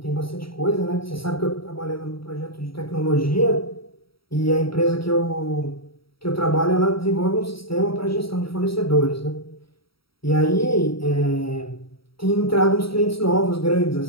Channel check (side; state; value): right; late; 0.75 ms